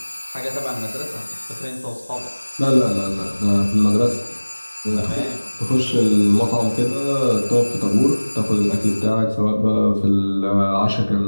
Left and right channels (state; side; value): inverted; both; correlation -1.00